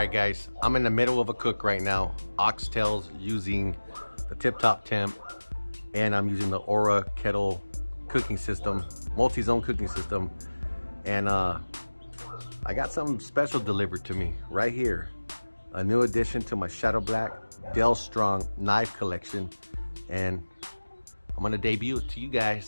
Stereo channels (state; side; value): inverted; both; correlation -1.00